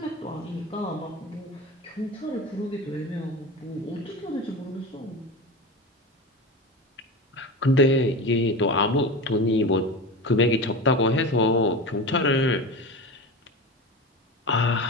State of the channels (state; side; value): normal; both; correlation 0.26